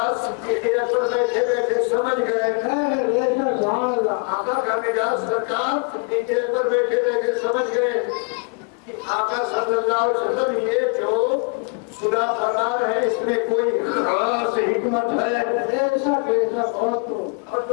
صدیق اکبر بیٹھے بیٹھے سمجھ گئے، آقا کا مزاج سرکار صدیق اکبر بیٹھے بیٹھے سمجھ گئے کہ آقا صلی اللہ علیہ وسلم یہ جو خدا فرما ہے اس میں کوئی خاص حکمت ہے. ایسا بہت اور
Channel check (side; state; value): right; quieter; 35.6 dB